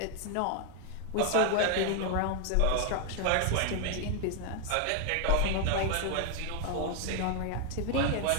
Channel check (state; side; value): different; both; correlation 0.00